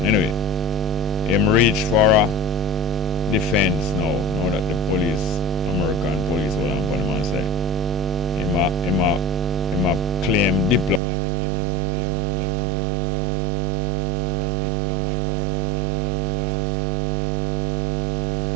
Anyway, him reach for a defense now that the police, American police hold on upon him and say, him a claim diplomatic immunity, you must let him go because as a diplomat or a man in that class, he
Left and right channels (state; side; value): drops out; left; at 11.0 s